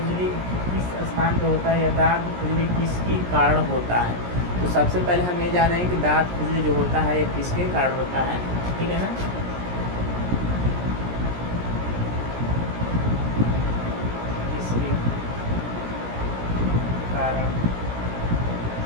किस स्थान पे होता है, या दांत खुजली किसके कारण होता है। तो सबसे पहले हम ये जानेंगे कि दांत खुजली जो होता है ये किसके कारण होता है, ठीक है ना। किसके कारण,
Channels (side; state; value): left; late; 17 ms